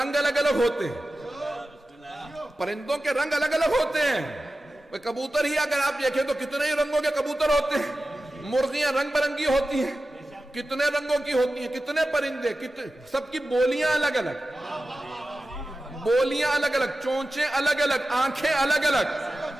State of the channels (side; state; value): both; normal; correlation 0.94